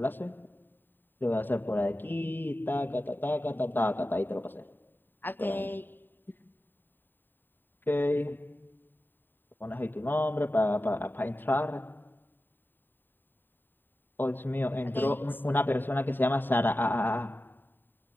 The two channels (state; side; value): late; right; 0.093 ms